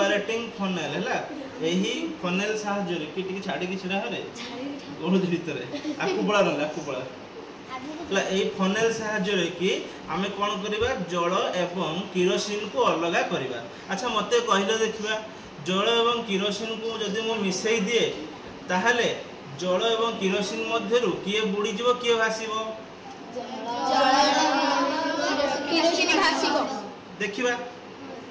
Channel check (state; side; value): identical; both; correlation 1.00